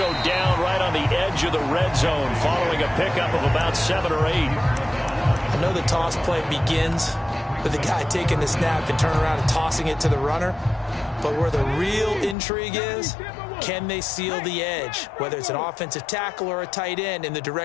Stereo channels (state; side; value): drops out; right; at 12.4 s